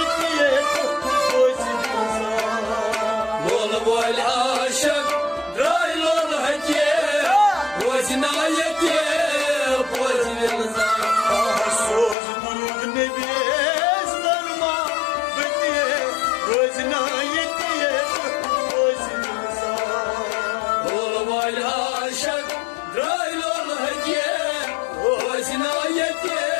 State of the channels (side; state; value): right; drops out; at 12.2 s